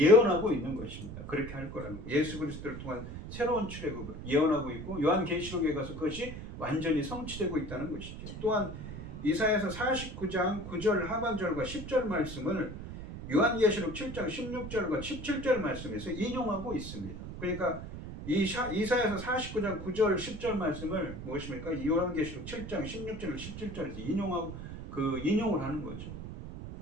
있는 것입니다. 그렇게 할 거라는 거예요. 예수 그리스도를 통한 새로운 출애굽을 예언하고 있고 요한계시록에 가서 그것이 완전히 성취되고 있다는 것이죠. 또한 이사야서 49장 9절 하반절과 10절 말씀을 요한계시록 7장 16절과 17절 말씀에서 인용하고 있습니다. 그러니까 이사야서 49장 9절 10절 말씀을 무엇입니까? 요한계시록 7장 16절 17절에서 인용을 하는 거죠.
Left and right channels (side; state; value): right; noise; rumble, 9 dB below the sound